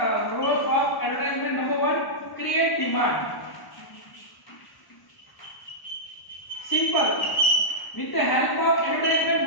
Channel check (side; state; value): right; late; 1.1 ms